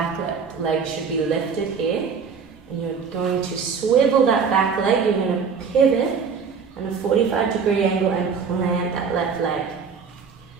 leg should be lifted here. And you're going to swivel that back leg. You're going to pivot on a 45-degree angle and plant that left leg.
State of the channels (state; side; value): quieter; left; 5.9 dB